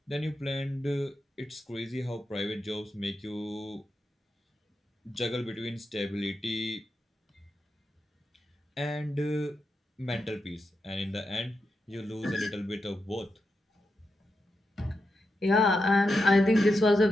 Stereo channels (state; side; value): normal; both; correlation 0.87